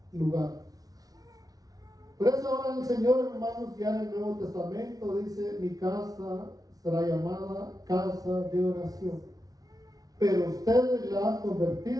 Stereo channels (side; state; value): left; late; 0.18 ms